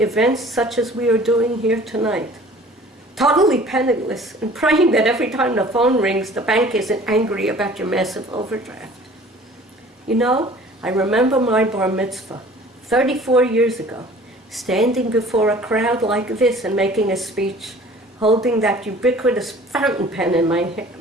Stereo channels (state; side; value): normal; both; correlation 0.48